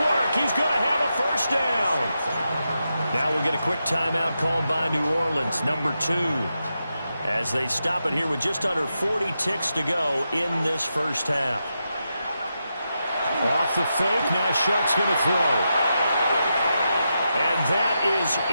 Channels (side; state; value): both; inverted; correlation -0.87